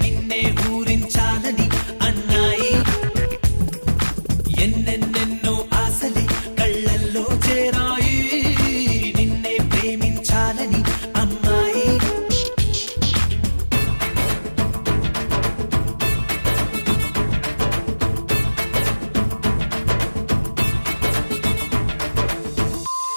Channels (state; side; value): inverted; both; correlation -1.00